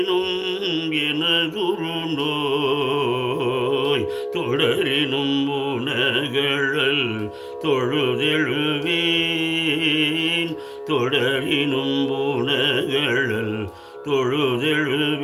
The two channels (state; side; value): identical; both; correlation 1.00